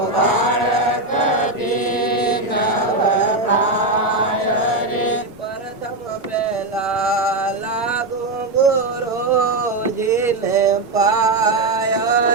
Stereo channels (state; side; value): quieter; left; 3.1 dB